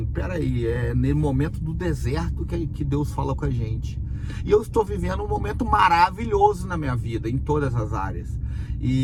peraí, é no momento do deserto que Deus fala com a gente. E eu estou vivendo um momento maravilhoso na minha vida, em todas as áreas.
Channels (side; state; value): both; identical; correlation 1.00